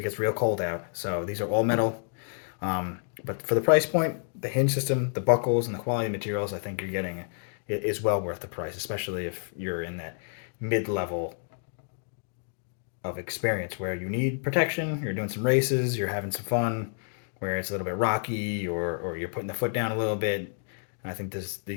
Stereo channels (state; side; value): silent; right; digital silence